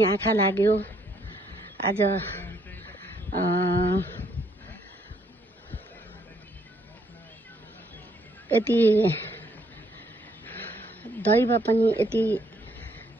आँखा लाग्यो। आज यति दैव पनि यति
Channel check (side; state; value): both; normal; correlation 0.70